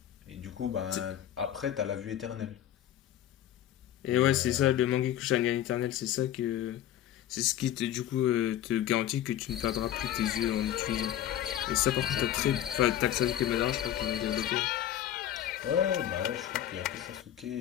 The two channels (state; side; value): quieter; right; 11.6 dB